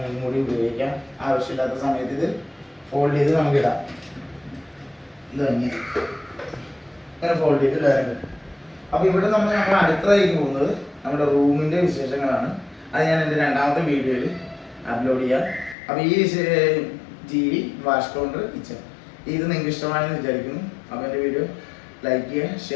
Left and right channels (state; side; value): drops out; right; at 15.8 s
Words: കൂടി ഉപയോഗിക്കാം. ആവശ്യമില്ലാത്ത സമയത്ത് ഇത് ഫോൾഡ് ചെയ്ത് നമുക്കിടാം. ഇത് ഇങ്ങനെ ഫോൾഡ് ചെയ്ത് ഇടാറുണ്ട്. അപ്പോൾ ഇവിടെ നമ്മൾ അടുത്തതായിട്ട് പോകുന്നത് നമ്മുടെ റൂമിൻ്റെ വിശേഷങ്ങളാണ്. അത് ഞാൻ എൻ്റെ 2ാമത്തെ വീഡിയോയിൽ അപ്ലോഡ് ചെയ്യാം. അപ്പോൾ ഈ TV, വാഷ് കൗണ്ടർ, കിച്ചൺ ഇത് നിങ്ങൾക്ക് ഇഷ്ടമായെന്ന് വിചാരിക്കുന്നു. അപ്പോൾ എൻ്റെ വീഡിയോ ലൈക്ക് ചെയ്യുക,